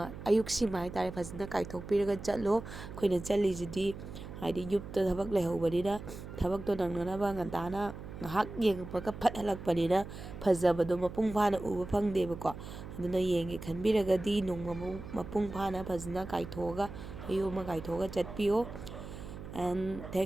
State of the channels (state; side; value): noise; right; hum, 11 dB below the sound